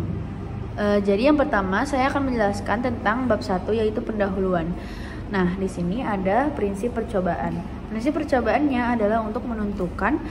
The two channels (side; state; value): both; identical; correlation 1.00